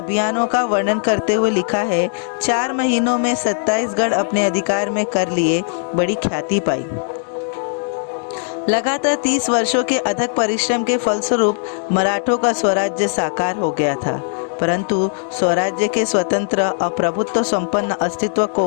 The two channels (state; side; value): silent; right; digital silence